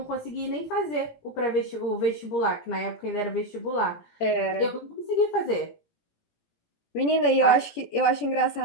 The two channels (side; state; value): right; late; 18 ms